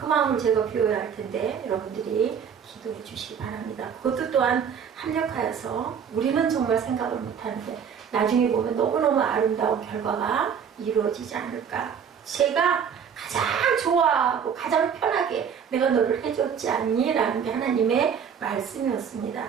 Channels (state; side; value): quieter; left; 7.4 dB